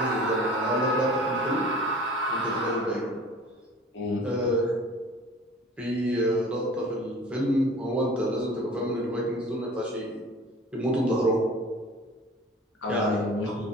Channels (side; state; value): both; normal; correlation 0.44